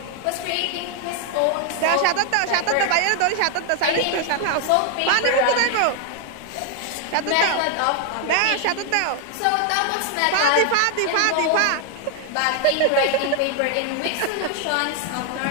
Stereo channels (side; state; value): both; different; correlation 0.00